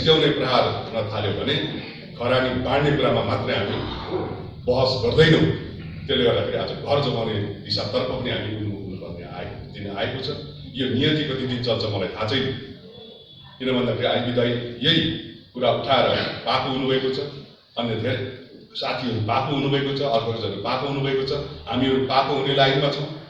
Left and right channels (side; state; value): both; identical; correlation 1.00